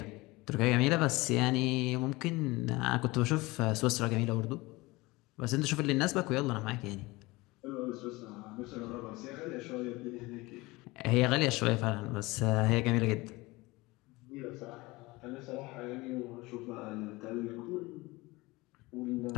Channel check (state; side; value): quieter; right; 21.9 dB